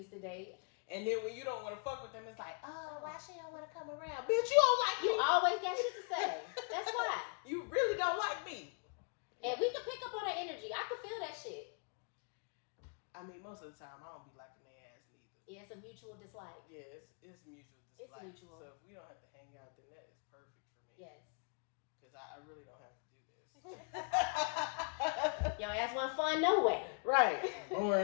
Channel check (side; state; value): right; quieter; 39.4 dB